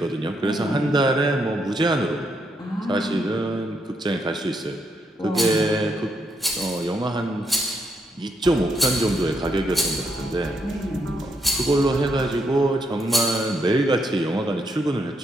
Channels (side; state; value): both; normal; correlation 0.78